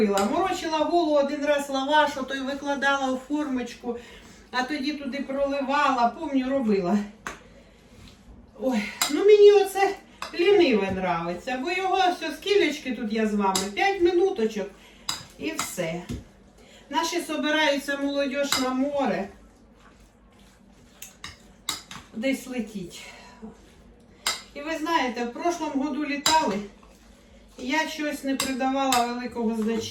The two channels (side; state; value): both; identical; correlation 1.00